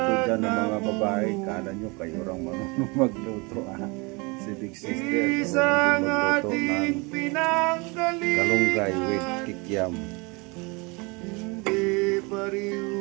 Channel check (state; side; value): quieter; left; 28.0 dB